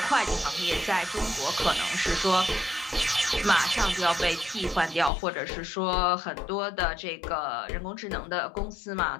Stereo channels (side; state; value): right; drops out; at 5.1 s